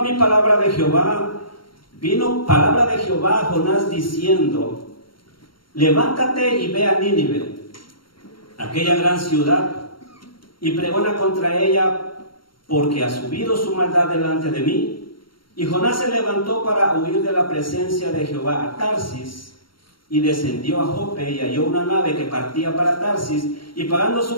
palabra de Jehová a Jonás diciendo: levántate y ve a Nínive, aquella gran ciudad, y pregona contra ella, porque ha subido su maldad delante de mí. Y Jonás se levantó para huir de la presencia de Jehová a Tarsis, y descendió a Jope y halló una nave que partía para Tarsis, y pagando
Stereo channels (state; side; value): late; right; 0.73 ms